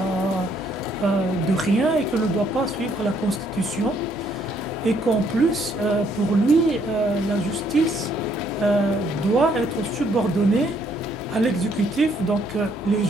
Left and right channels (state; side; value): normal; both; correlation 0.68